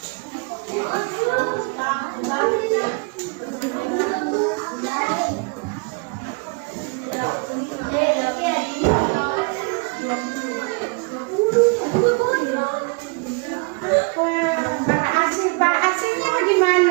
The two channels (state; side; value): quieter; left; 32.5 dB